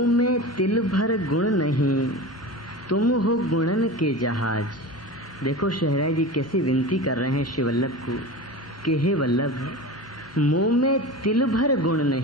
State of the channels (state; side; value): normal; both; correlation 0.30